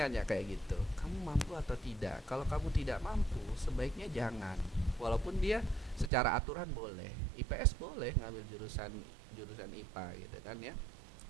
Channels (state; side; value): drops out; left; at 6.1 s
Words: nanya kayak gitu, kamu mampu atau tidak? Kalau kamu tidak mampu, sebaiknya jangan. Walaupun dia secara aturan boleh, IPS boleh ngambil jurusan IPA gitu kan ya.